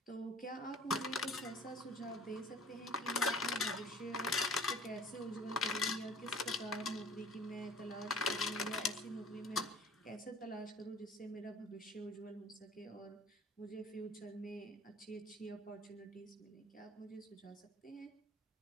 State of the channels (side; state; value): both; normal; correlation 0.48